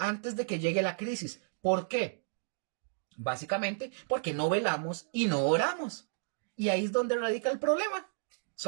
de que llegue la crisis. ¿Por qué? Básicamente porque no velamos y no oramos. Y ahí es donde radica el problema.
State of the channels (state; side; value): silent; left; digital silence